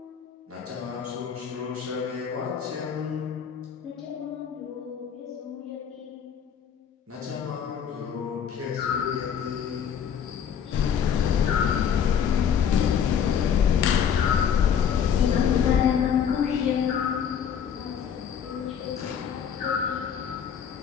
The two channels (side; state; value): right; quieter; 8.0 dB